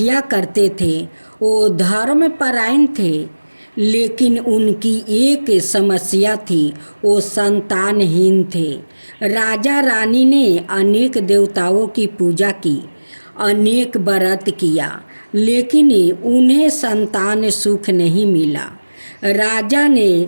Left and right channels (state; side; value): inverted; both; correlation -1.00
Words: करते थे। वो धर्मपरायण थे, लेकिन उनकी एक समस्या थी, वो संतानहीन थे। राजा रानी ने अनेक देवताओं की पूजा की, अनेक व्रत किया, लेकिन उन्हें संतान सुख नहीं मिला। राजा ने